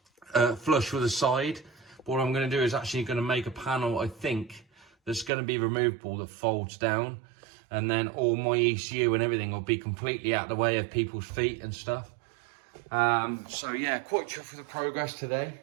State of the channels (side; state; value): left; drops out; at 5.3 s